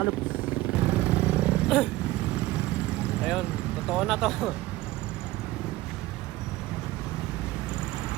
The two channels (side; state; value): left; quieter; 17.7 dB